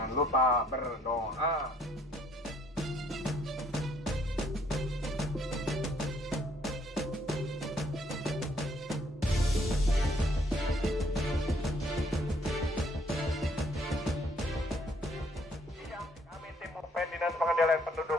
lupa berdoa. Kami tim Mupen Dinas Pengendalian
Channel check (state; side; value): normal; both; correlation 0.65